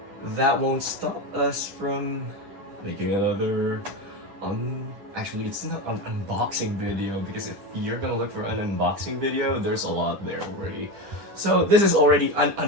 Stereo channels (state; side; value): late; left; 10 ms